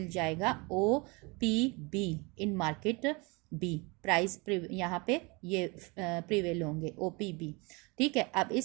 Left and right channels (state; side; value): quieter; left; 27.7 dB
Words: जाएगा O P B in market B, price यहाँ पे ये प्रिवेल होंगे ओ पी बी, ठीक है। अब